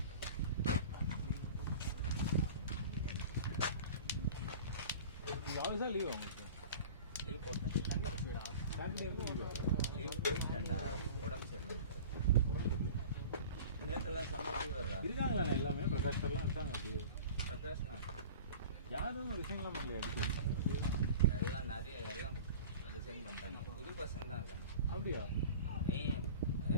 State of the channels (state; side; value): inverted; both; correlation -0.38